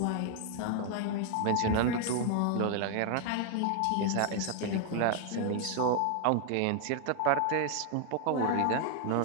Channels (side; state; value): both; different; correlation 0.00